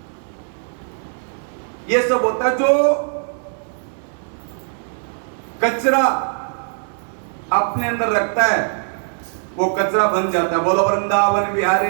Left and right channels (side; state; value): left; silent; digital silence